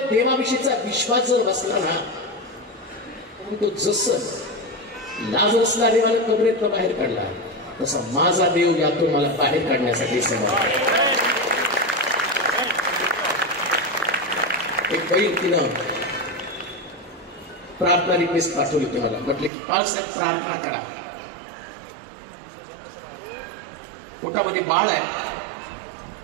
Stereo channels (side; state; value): left; drops out; at 19.5 s